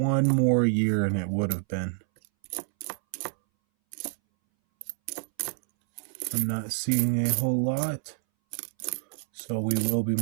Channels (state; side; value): silent; left; 60 dB below the other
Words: more year and it would have been. I'm not seeing a whole lot. So we will be